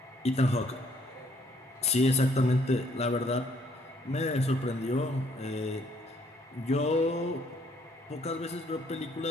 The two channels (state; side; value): normal; both; correlation 0.66